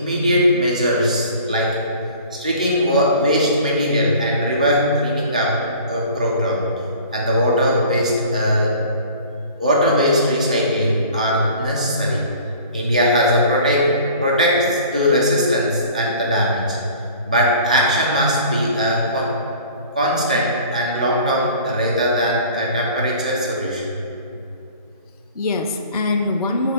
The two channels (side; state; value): both; inverted; correlation -0.46